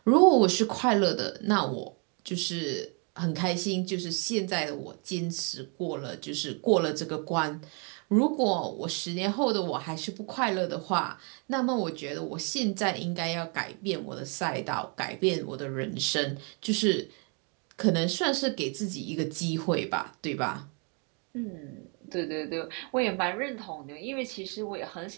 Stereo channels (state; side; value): quieter; left; 36.1 dB